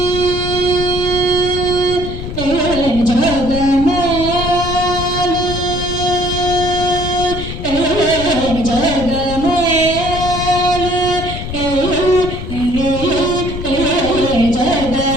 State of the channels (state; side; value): noise; left; rumble, 7 dB below the sound